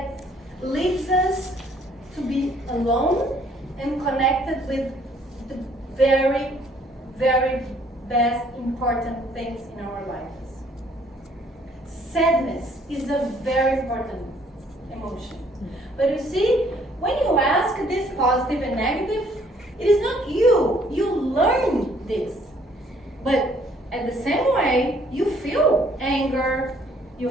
leads us to be alone and connected with the very, very best important things in our lives. Sadness is a very important emotion. But you see, when you ask this positive and negative, it is not you. You learn this. But at the same way, you feel anger, you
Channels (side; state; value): both; normal; correlation 0.62